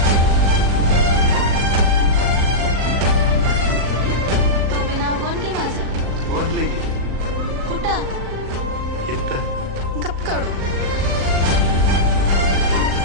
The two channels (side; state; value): left; late; 38 ms